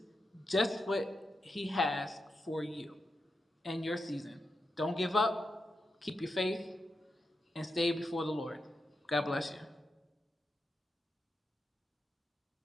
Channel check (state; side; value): normal; both; correlation 0.88